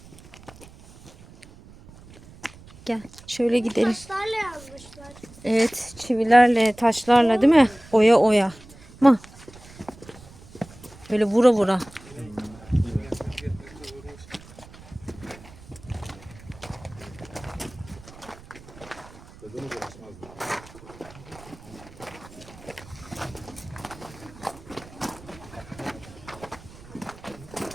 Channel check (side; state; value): right; noise; rumble, 20 dB below the sound